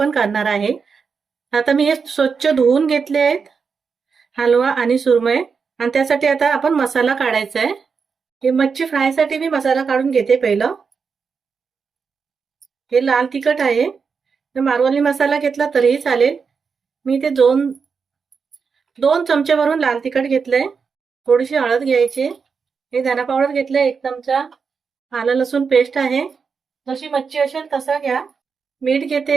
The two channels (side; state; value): left; quieter; 5.6 dB